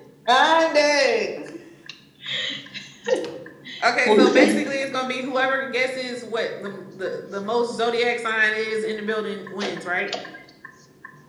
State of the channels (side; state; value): both; identical; correlation 1.00